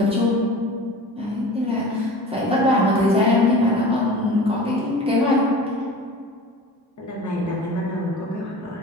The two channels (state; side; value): normal; both; correlation 0.38